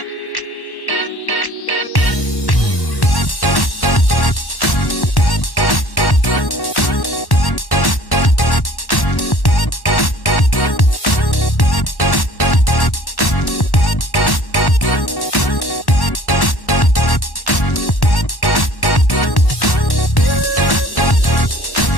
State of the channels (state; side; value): late; right; 1.1 ms